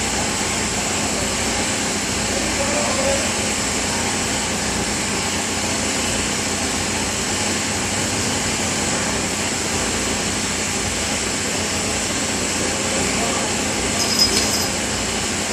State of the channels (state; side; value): identical; both; correlation 1.00